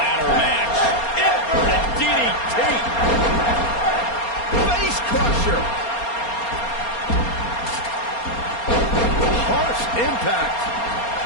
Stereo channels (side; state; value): right; late; 4.3 ms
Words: match. Inverted DDT. Face crusher. Harsh impact.